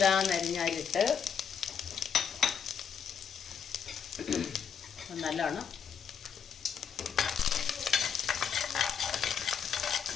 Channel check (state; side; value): quieter; right; 7.4 dB